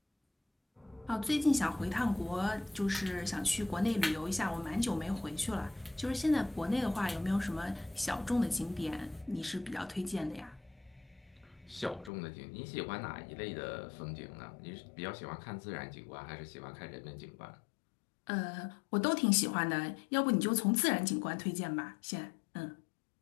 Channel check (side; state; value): right; drops out; at 12.1 s